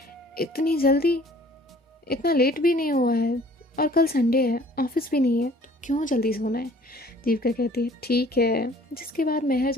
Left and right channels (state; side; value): normal; both; correlation 0.53